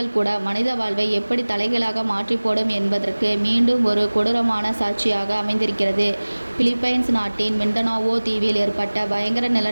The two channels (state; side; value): inverted; both; correlation -1.00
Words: கூட மனித வாழ்வை எப்படி தலைகீழாக மாற்றி போடும் என்பதற்கு மீண்டும் ஒரு கொடூரமான சாட்சியாக அமைந்திருக்கிறது. பிலிப்பைன்ஸ் நாட்டின் மிண்டனாவோ தீவில் ஏற்பட்ட பயங்கர